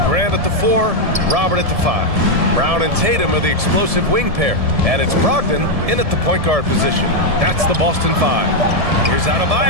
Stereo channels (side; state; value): left; late; 1.7 ms